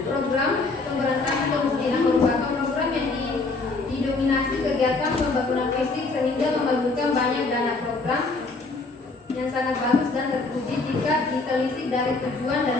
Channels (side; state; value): right; quieter; 3.6 dB